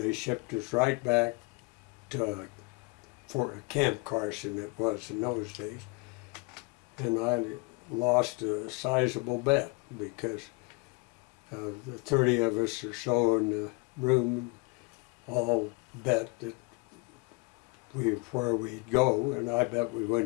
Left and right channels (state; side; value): quieter; right; 28.4 dB